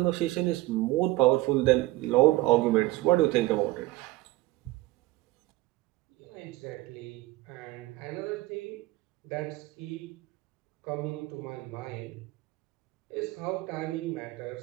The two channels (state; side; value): quieter; left; 18.8 dB